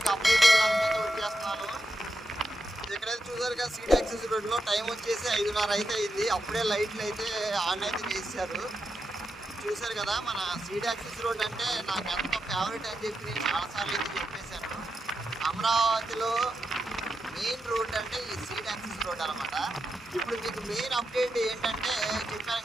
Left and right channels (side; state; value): both; normal; correlation 0.87